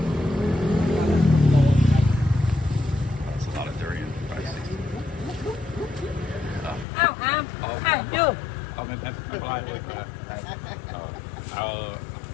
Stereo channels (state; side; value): drops out; right; at 6.9 s